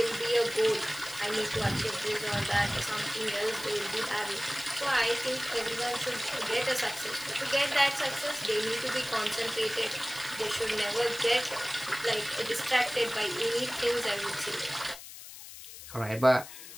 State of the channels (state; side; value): noise; left; hiss, 14 dB below the sound